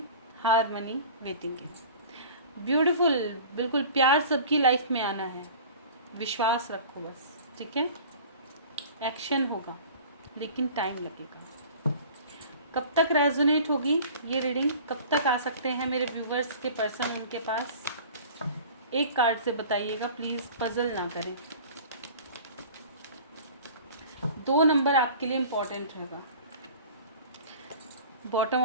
हार्मनी, वेटिंग है। ब्यूटीफुल, बिल्कुल प्यार सबकी लाइफ में आना है, विश्वास रखो बस, ठीक है। एक्शन होगा लेकिन टाइम लगेगा। कब तक रेजोनेट होगी ये रीडिंग, कब तक आ सकते हैं मेरे व्यूवर्स के पर्सन उनके पास? एक कार्ड से बताइएगा प्लीज़, पजल ना करें। 2 नंबर आपके लिए इम्पोर्टेंट रहेगा। Bottom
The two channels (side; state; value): both; inverted; correlation -0.42